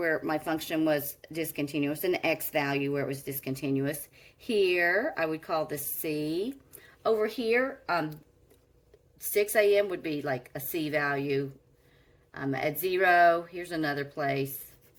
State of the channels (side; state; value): both; identical; correlation 1.00